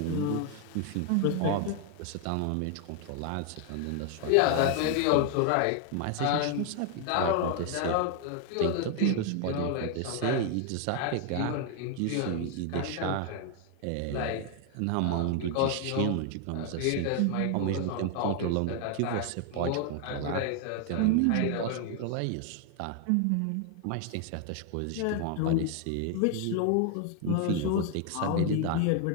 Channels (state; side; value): different; both; correlation 0.00